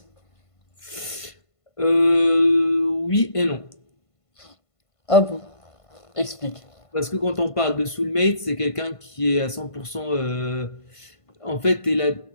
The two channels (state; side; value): late; right; 1.5 ms